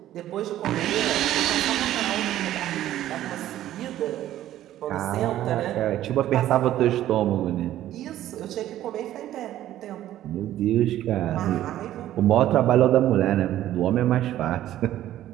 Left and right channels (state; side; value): quieter; left; 13.1 dB